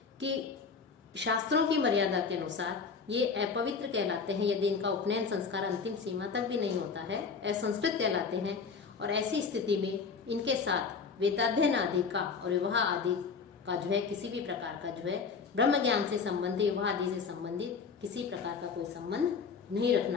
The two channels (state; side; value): quieter; right; 5.4 dB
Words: कि शास्त्रों की मर्यादा के अनुसार ये अपवित्र कहलाते हैं यदि इनका उपनयन संस्कार अंतिम सीमा तक भी नहीं होता है, असंस्कृत कहलाते हैं। और ऐसी स्थिति में इनके साथ वेदाध्ययन आदि का और विवाह आदि का जो है किसी भी प्रकार का जो है ब्रह्म ज्ञान से संबंधित, विवाह आदि से संबंधित किसी प्रकार का कोई संबंध नहीं